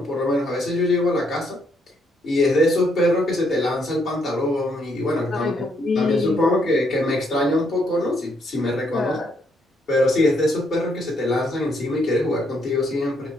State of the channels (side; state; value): both; normal; correlation 0.73